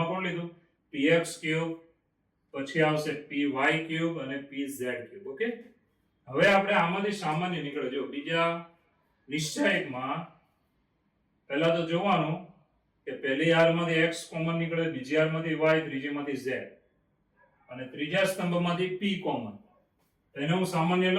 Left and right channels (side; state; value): both; identical; correlation 1.00